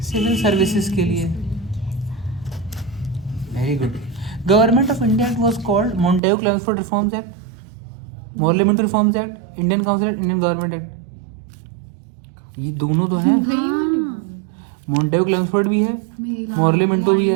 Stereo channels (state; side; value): drops out; left; at 6.2 s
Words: सिविल सर्विसेज के लिए। Very good. Government of India it was called Montagu Chelmsford reforms act, parliament reforms act, Indian council act, Indian government act. ये दोनों तो हैं। मॉन्टेगू क्लेमेंसफोर्ड भी है, पार्लियामेंट भी